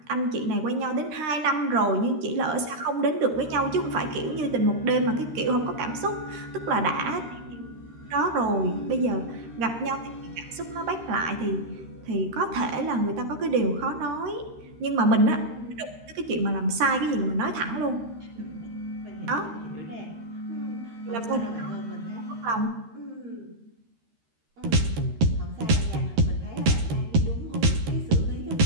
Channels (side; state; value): left; late; 13 ms